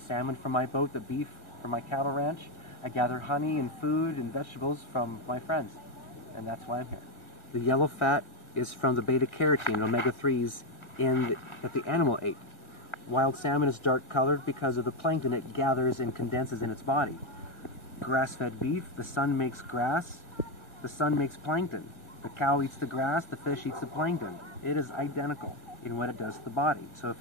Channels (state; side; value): late; right; 1.4 ms